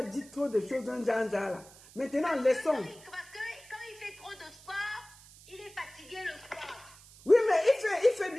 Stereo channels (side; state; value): right; noise; hiss, 22 dB below the sound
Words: dit trop de choses d'un genre là. Maintenant, laissons. Parce que quand il fait trop de sport, il est fatigué le soir. Oui, mais il fait